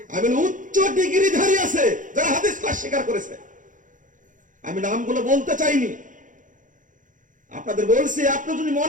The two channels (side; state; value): left; late; 0.38 ms